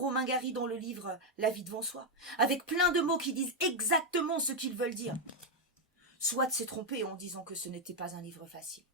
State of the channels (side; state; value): both; normal; correlation 0.02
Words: Gary dans le livre La vie devant soi, avec plein de mots qui disent exactement ce qu'ils veulent dire. Soit s'est trompé en disant que ce n'était pas un livre facile.